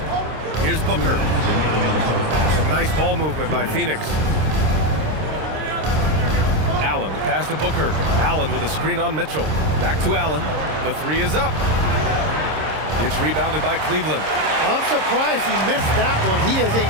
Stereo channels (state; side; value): late; left; 26 ms